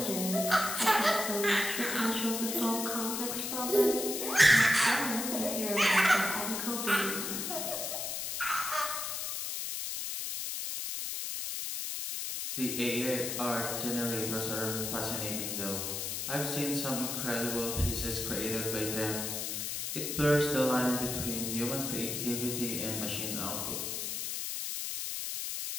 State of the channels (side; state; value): left; noise; hiss, 3 dB below the sound